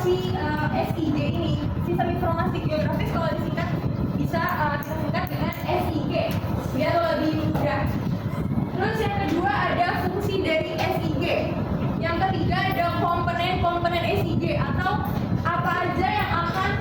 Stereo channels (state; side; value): identical; both; correlation 1.00